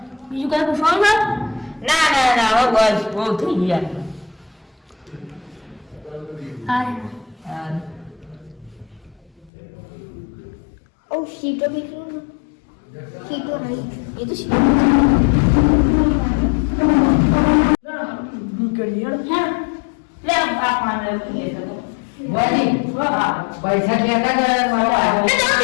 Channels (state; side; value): drops out; right; at 9.5 s